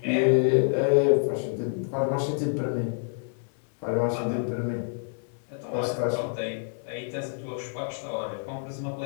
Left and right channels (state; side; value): silent; right; 60 dB below the other